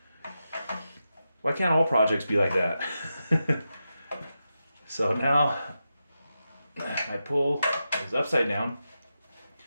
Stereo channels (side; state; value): both; inverted; correlation -0.89